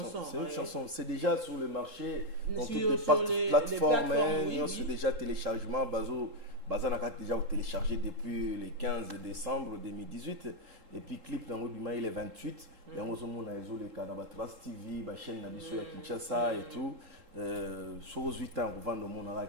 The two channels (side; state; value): left; late; 3.8 ms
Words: une chanson. C'est déjà sur le marché. Dans toutes les plateformes. C'est déjà téléchargement. Bazana a déjà téléchargé depuis le 15 décembre 2018 et puis clip dans Obima il est 28 et on a les canaux Trust TV la chaîne Nabiso à Kinshasa et tout sur 8 ans on vend le monde là